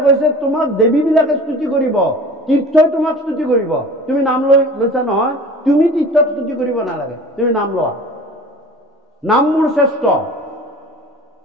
কৈছে তোমাক দেৱীবিলাকে স্তুতি কৰিব, তীৰ্থই তোমাক স্তুতি কৰিব। তুমি নাম লৈছা নহয়, তুমি তীৰ্থক স্তুতি কৰিব নালাগে, তুমি নাম লোৱা। নাম মোৰ শ্ৰেষ্ঠ।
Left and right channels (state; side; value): normal; both; correlation 0.41